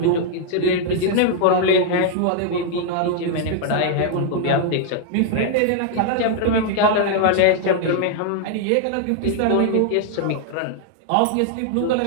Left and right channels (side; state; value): both; different; correlation -0.01